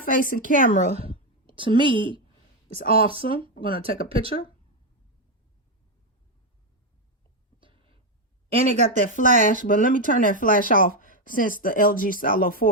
facing camera, to me, is awesome. I'm going to take a picture. And it got that flash, but let me turn that flash off, since the LG Stylo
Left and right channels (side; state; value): both; normal; correlation 0.06